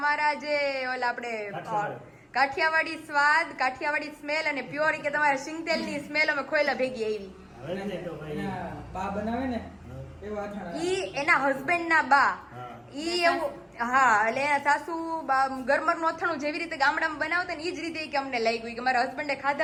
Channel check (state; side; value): identical; both; correlation 1.00